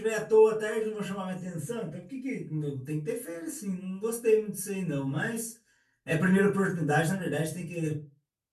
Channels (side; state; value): both; identical; correlation 1.00